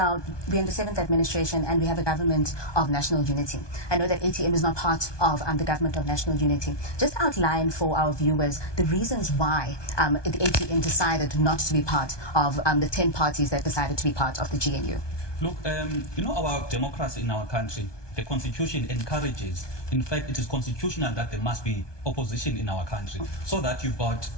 we're in the 7th administration and we have a government of national unity. I know that ATM is not part of the government of national unity. Just outline for our viewers the reasons why the ATM decided not to be part of the 10 parties that decided to be part of the GNU. Look, our democracy in our country, the constitution encourages, in fact, it is constitutional that there must be opposition in our country, so that you've got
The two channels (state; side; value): late; right; 1.2 ms